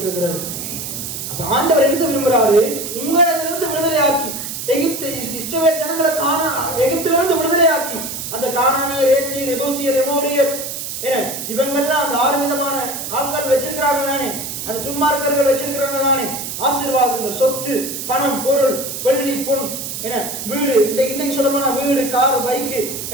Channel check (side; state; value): right; noise; hiss, 6 dB below the sound